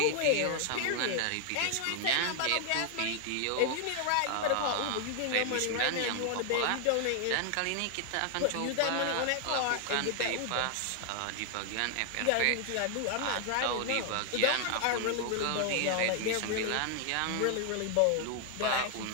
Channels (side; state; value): both; different; correlation 0.00